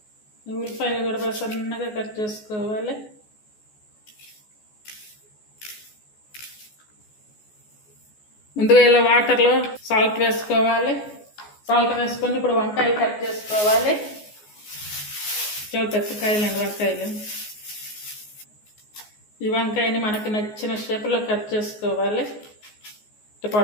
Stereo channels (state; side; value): late; right; 14 ms